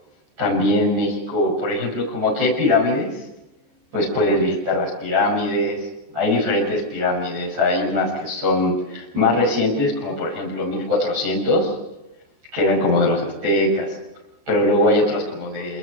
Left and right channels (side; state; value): left; late; 14 ms